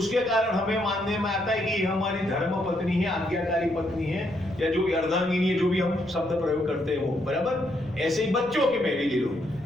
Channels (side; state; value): right; noise; rumble, 20 dB below the sound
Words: कारण हमें मानने में आता है कि हमारी धर्म पत्नी है, आज्ञाकारी पत्नी है, या जो भी अर्धांगिनी है, जो भी हम शब्द प्रयोग करते हैं वो, बराबर। ऐसे ही बच्चों के में भी ले लो,